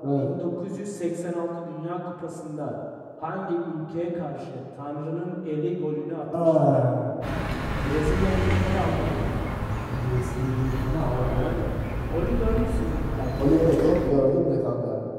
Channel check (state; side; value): identical; both; correlation 1.00